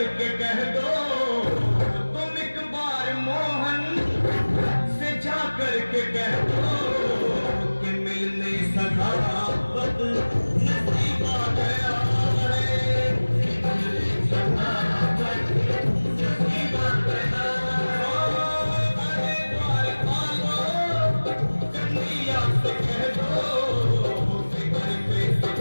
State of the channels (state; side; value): inverted; both; correlation -1.00